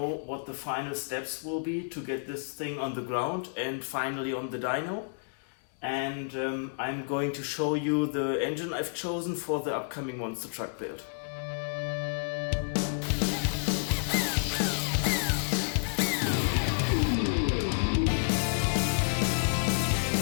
what the final steps will be to get this thing on the ground and finally on the dyno. And I'm going to show you the engine I've chosen for the upcoming monster truck build.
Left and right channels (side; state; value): right; silent; digital silence